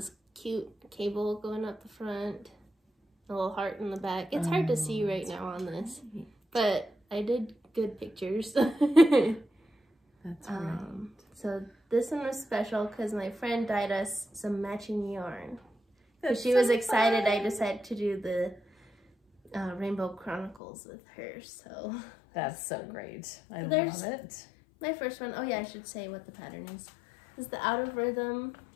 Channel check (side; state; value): right; drops out; at 20.6 s